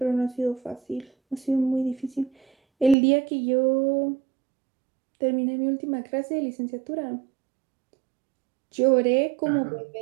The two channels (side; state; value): left; drops out; at 3.0 s